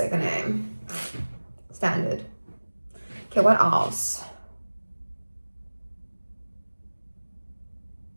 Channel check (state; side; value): inverted; both; correlation -1.00